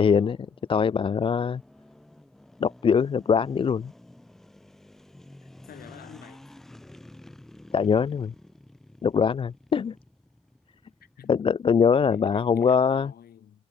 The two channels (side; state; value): right; quieter; 6.1 dB